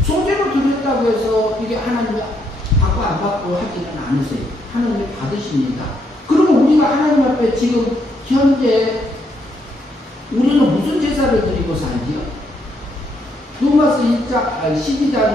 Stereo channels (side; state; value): both; normal; correlation 0.75